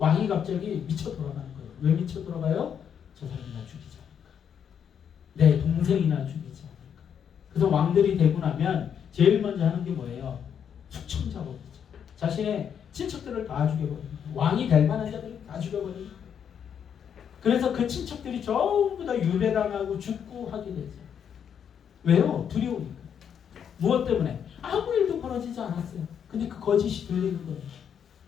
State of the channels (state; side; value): quieter; right; 8.1 dB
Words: 갑자기 미쳐 돌아가는 거예요. 왜 미쳐 돌아가요? 저 사람이나 죽이지 않을까. 내 동생이나 죽이지 않을까. 그래서 왕들이 되고 나면 제일 먼저 하는 게 뭐예요? 숙청작업이죠. 자신의 친척들을 다 죽여버립니다. 왕이 될 만한 자들을 다 죽여버립니다. 그래서 그 친척들이 전부 다 유배당하고 죽고 하게 되죠. 왜요? 두려우니까. 무엇 때문에? 아무 일도 벌어지지 않았어요. 근데 그 거짓이 들리는 거예요.